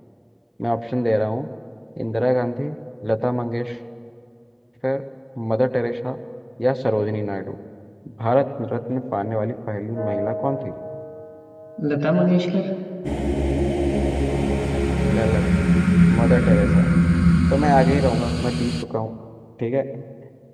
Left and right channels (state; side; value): identical; both; correlation 1.00